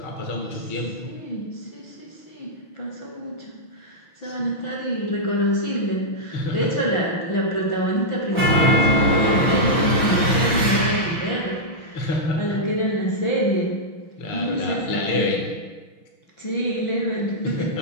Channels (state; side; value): late; right; 6.2 ms